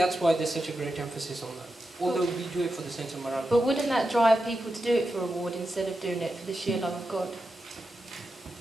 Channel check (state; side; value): normal; both; correlation 0.89